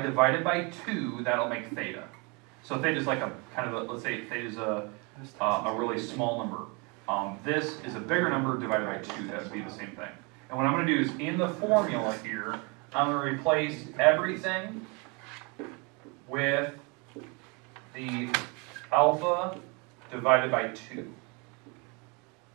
divide it by 2, that'll make theta. So theta is like a kind of a, let's say theta is a really small number. This is a bigger number divided by 2. That would be the same thing. And what I'm going to do is in the formula here, I'm going to replace everything with the alpha divided by 2.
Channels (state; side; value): quieter; left; 30.6 dB